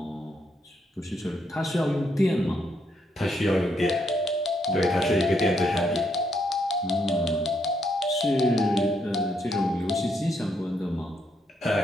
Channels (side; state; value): both; normal; correlation 0.76